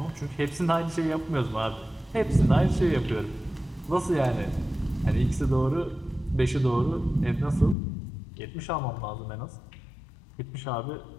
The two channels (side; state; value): right; drops out; at 7.8 s